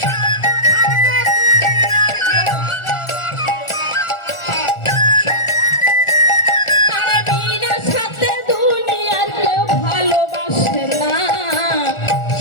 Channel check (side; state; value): right; late; 1.4 ms